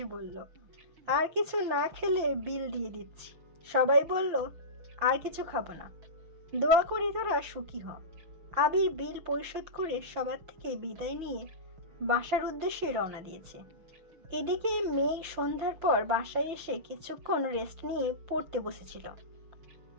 বলল, আর কিছু না খেলে বিল দিয়ে দিচ্ছি। সবাই বলল, আর কিছু খাবো না, দোয়া করি তোরা সুখী হ। আবির বিল পরিশোধ করে সবার থেকে বিদায় নিয়ে বাসার উদ্দেশ্যে রওনা দিয়েছে। এদিকে মেয়ে সন্ধ্যার পর বাসায় এসে কিছুক্ষণ রেস্ট নিয়ে পড়তে বসেছিল।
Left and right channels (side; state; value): left; late; 6.2 ms